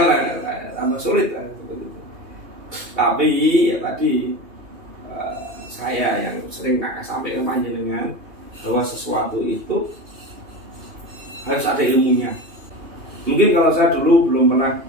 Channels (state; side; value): late; left; 2.8 ms